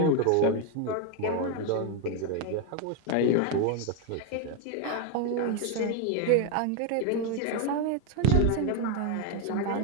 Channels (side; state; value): both; different; correlation 0.01